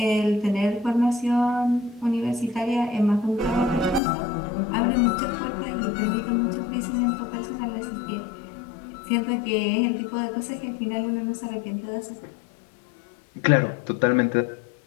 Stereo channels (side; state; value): right; drops out; at 4.0 s